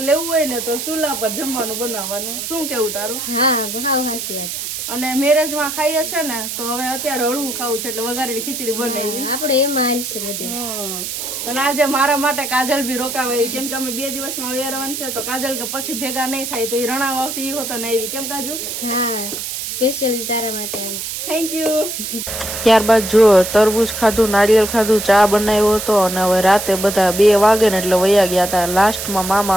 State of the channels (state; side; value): noise; right; hiss, 5 dB below the sound